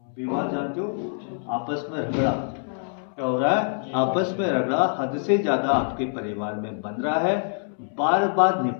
विवाद जानते हो? आपस में झगड़ा क्या हो रहा है? आपस में रगड़ा हद से ज्यादा आपके परिवार में बन रहा है। बार बार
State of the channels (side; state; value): right; silent; 62 dB below the other